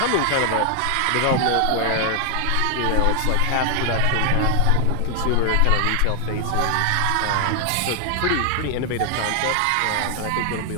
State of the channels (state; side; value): different; both; correlation 0.00